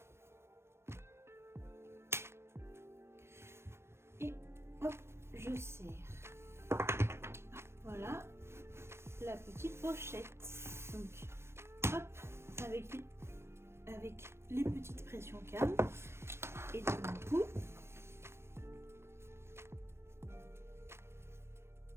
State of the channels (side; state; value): left; late; 0.12 ms